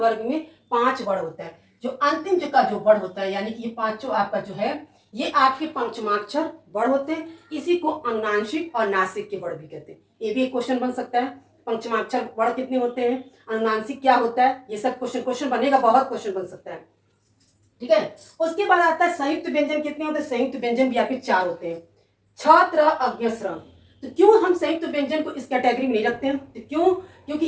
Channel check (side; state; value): both; identical; correlation 1.00